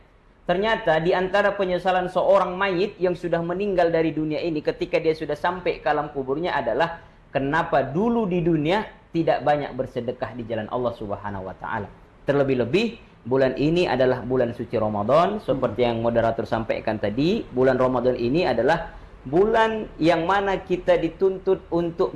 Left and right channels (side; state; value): both; identical; correlation 1.00